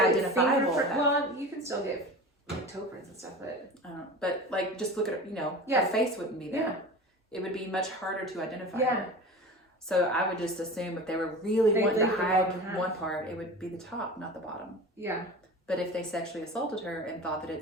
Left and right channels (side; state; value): both; normal; correlation 0.34